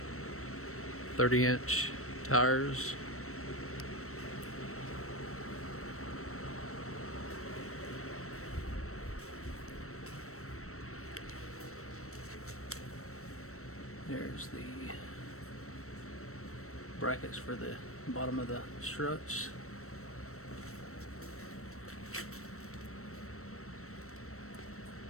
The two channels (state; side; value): late; right; 0.63 ms